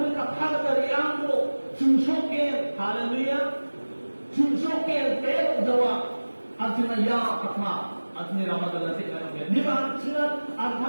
ka kagari ako susukin hallelujah susukin pero jawa at sinaya katma at niramadan na sinaya di ba sila at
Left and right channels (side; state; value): both; inverted; correlation -1.00